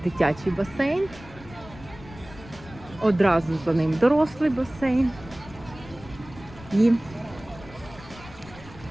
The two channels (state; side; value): noise; left; rumble, 18 dB below the sound